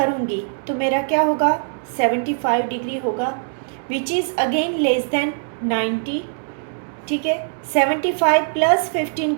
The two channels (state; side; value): silent; left; 65 dB below the other